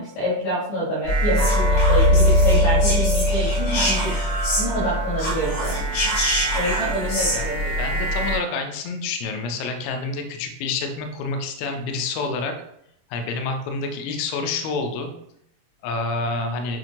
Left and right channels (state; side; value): late; right; 24 ms